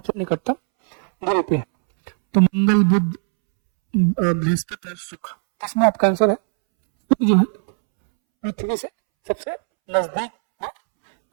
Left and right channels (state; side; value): silent; left; 66 dB below the other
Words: निकटतम दूरी पे है। तो मंगल, बुध, बृहस्पति और शुक्र। इसमें आपका आंसर है शुक्र जो है पृथ्वी से सबसे नजदीक